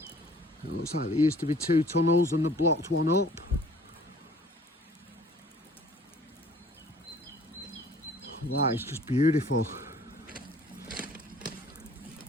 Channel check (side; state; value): both; normal; correlation 0.53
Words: It looks like there used to be two tunnels and they blocked one up. That is just beautiful.